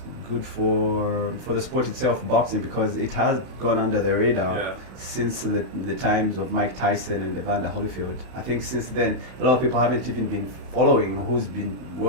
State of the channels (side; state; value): left; late; 31 ms